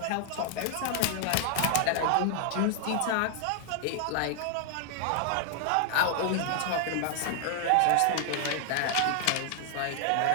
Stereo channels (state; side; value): different; both; correlation 0.00